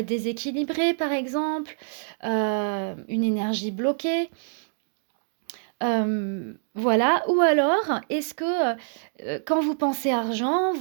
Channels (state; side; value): silent; left; digital silence